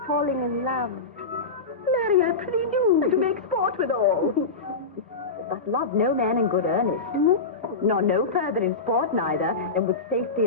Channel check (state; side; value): quieter; right; 3.8 dB